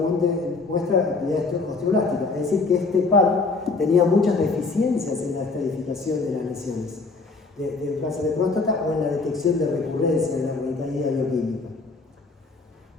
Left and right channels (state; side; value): quieter; right; 3.9 dB